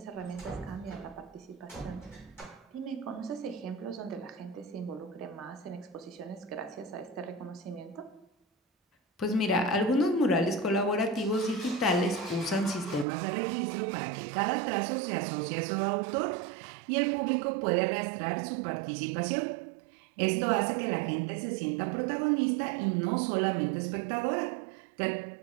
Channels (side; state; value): left; drops out; at 13.1 s